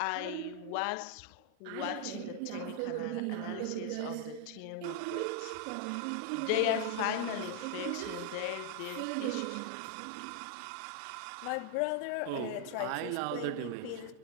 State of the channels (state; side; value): different; both; correlation 0.00